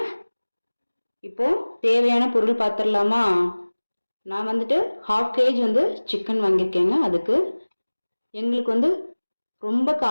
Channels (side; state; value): both; inverted; correlation -1.00